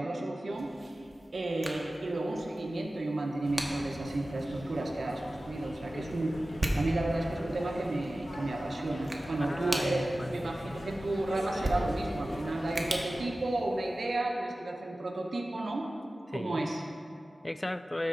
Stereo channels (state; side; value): normal; both; correlation 0.96